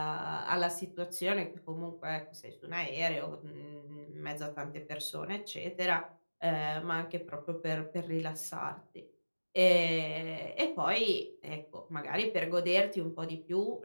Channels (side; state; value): both; inverted; correlation -1.00